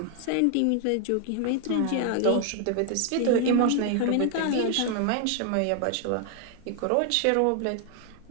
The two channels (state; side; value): different; both; correlation 0.00